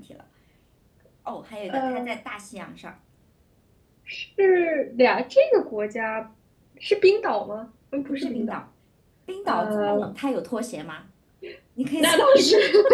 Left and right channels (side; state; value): both; identical; correlation 1.00